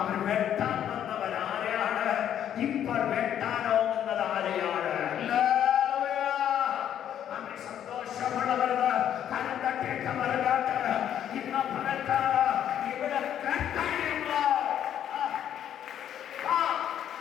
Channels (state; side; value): quieter; right; 10.1 dB